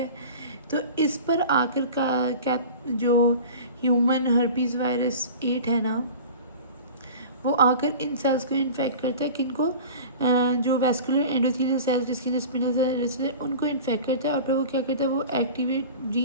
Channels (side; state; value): both; inverted; correlation -0.36